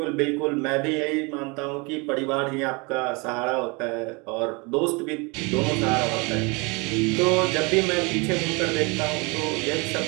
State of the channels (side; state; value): left; quieter; 28.6 dB